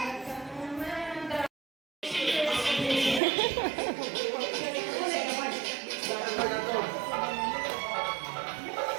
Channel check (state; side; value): drops out; left; at 3.2 s